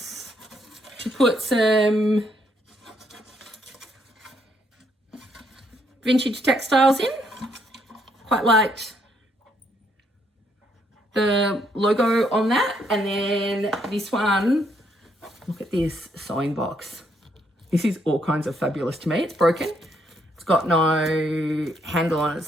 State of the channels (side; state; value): both; normal; correlation 0.72